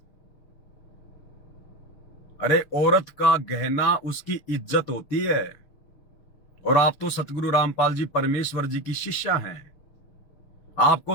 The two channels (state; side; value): late; right; 6.5 ms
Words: अरे औरत का गहना उसकी इज्जत होती है, और आप तो सतगुरु रामपाल जी परमेश्वर जी की शिष्या हैं। आपको